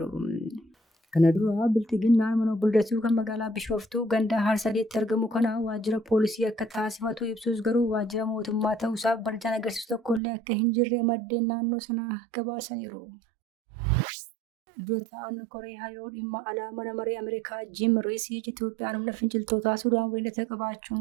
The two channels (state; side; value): drops out; left; at 10.2 s